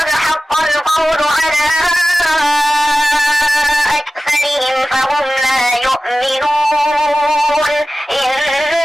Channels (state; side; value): normal; both; correlation 0.96